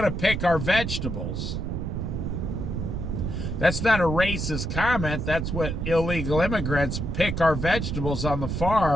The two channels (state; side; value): noise; right; rumble, 3 dB below the sound